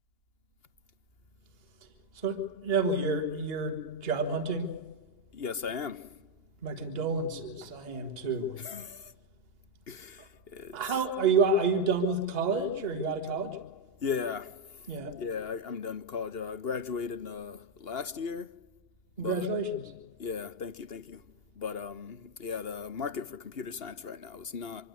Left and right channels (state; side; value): late; right; 2.8 ms